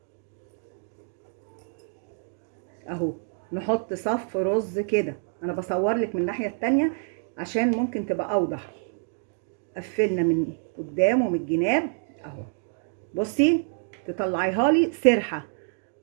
اهو، نحط صف رز كده. انا بصور لك من الناحيه التانية عشان ممكن تبقى اوضح. قفلنا من قدام ومن الجناب اهو. بصي تطلعيها لي سرحه،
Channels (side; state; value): left; silent; 60 dB below the other